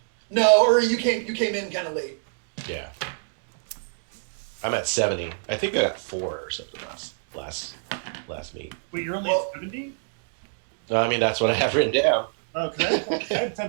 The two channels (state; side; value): silent; left; digital silence